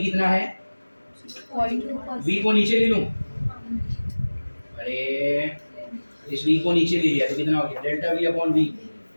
कितना है? 0.2%. वी को नीचे ले लूं? अरे इस वी को नीचे ले लिया तो कितना हो गया? Delta V upon V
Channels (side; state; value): both; inverted; correlation -1.00